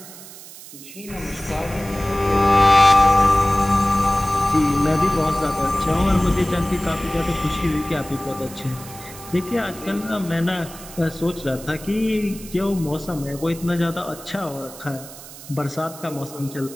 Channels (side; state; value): right; noise; hiss, 16 dB below the sound